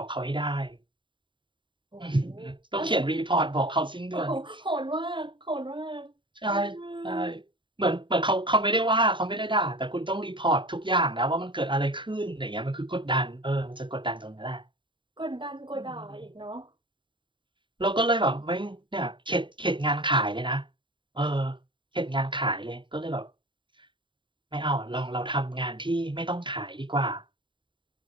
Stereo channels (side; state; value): left; late; 0.23 ms